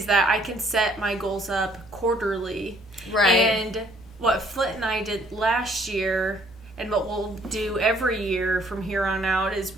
that I can set my goals up quarterly. Right. And what Flint and I did last year and what we'll do every year from here on out is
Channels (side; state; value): both; normal; correlation 0.62